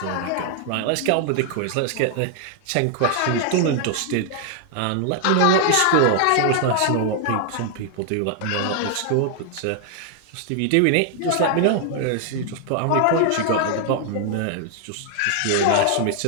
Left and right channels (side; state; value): both; different; correlation 0.00